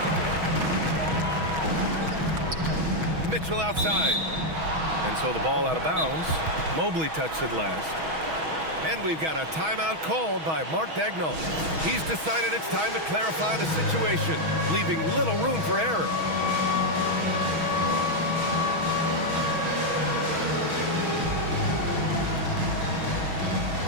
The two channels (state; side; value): late; left; 6.2 ms